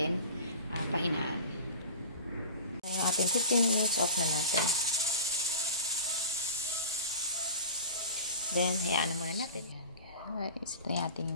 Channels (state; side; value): inverted; both; correlation -0.36